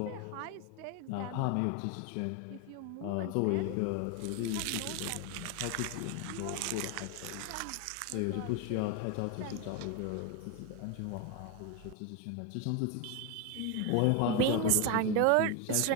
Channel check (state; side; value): different; both; correlation 0.02